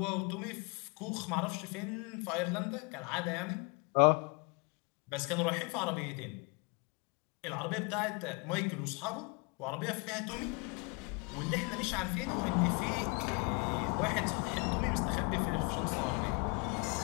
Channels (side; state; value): right; quieter; 31.7 dB